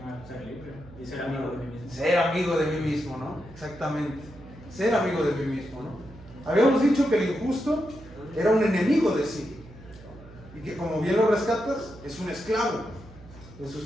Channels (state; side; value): noise; right; hum, 19 dB below the sound